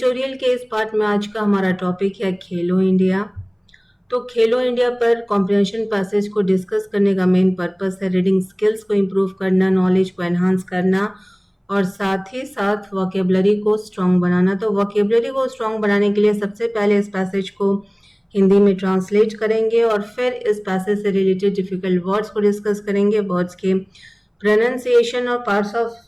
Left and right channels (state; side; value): identical; both; correlation 1.00